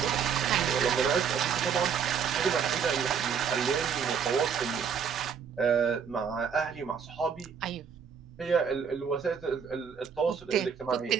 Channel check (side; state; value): left; quieter; 6.9 dB